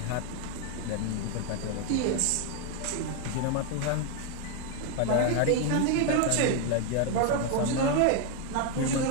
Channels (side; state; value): both; different; correlation 0.01